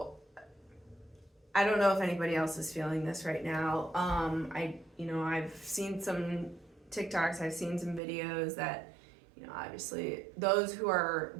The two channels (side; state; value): left; drops out; at 8.0 s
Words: I don't know if anybody else is feeling this right now. I've seen some TikToks, I've seen some videos that, you know, obviously those who are